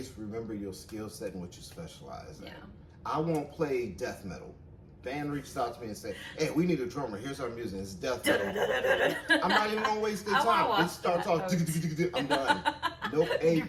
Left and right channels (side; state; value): both; identical; correlation 1.00